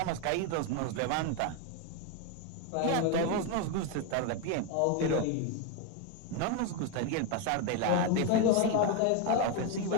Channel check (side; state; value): both; different; correlation 0.02